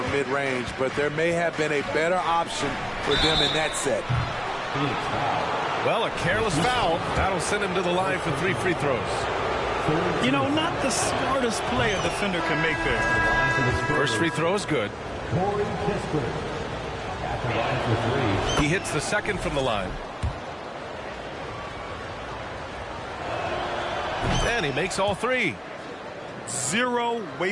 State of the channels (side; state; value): both; identical; correlation 1.00